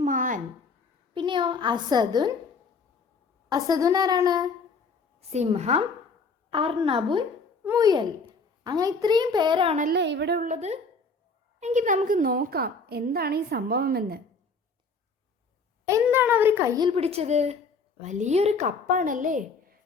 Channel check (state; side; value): quieter; right; 4.2 dB